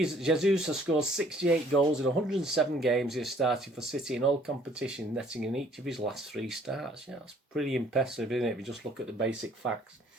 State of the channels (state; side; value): normal; both; correlation 0.59